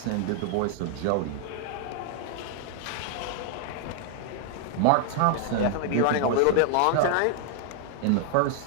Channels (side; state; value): both; different; correlation 0.00